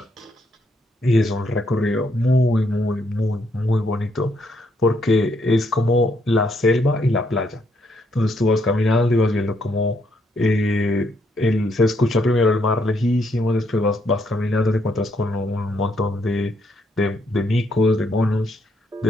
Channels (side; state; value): both; normal; correlation 0.74